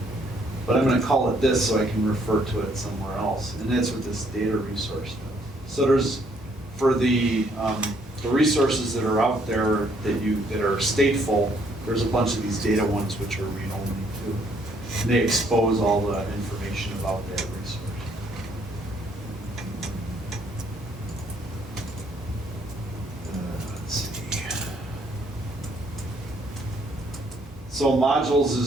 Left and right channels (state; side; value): normal; both; correlation 0.67